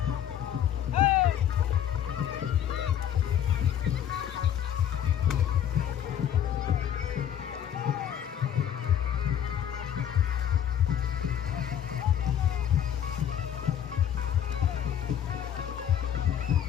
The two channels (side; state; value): right; quieter; 9.9 dB